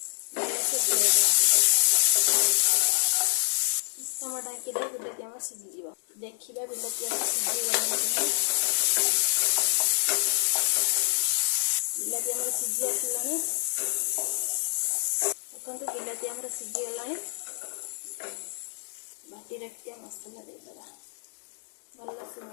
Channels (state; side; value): silent; right; digital silence